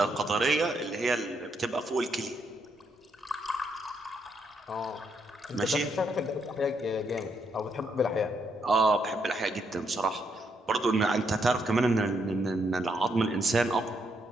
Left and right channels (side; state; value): both; normal; correlation 0.76